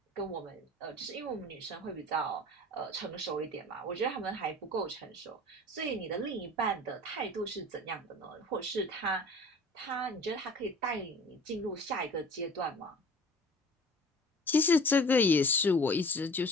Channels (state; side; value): normal; both; correlation 0.44